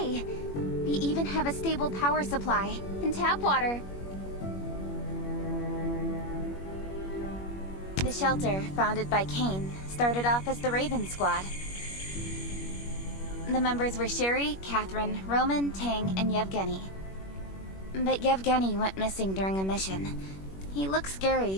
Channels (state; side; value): late; right; 21 ms